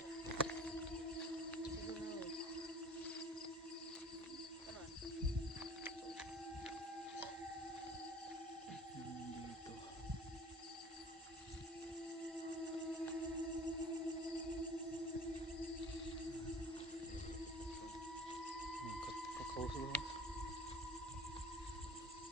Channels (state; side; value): normal; both; correlation 0.45